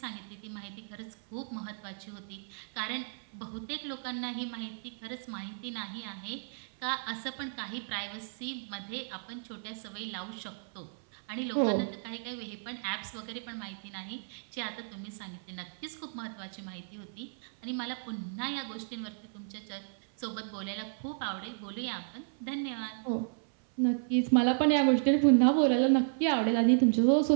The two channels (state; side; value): silent; left; 56 dB below the other